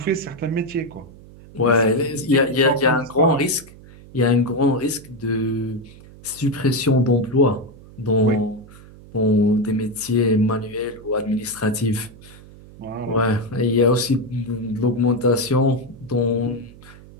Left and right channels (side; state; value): right; noise; hum, 20 dB below the sound